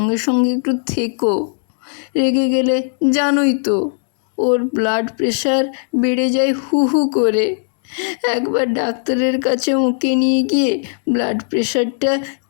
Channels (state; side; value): silent; right; 68 dB below the other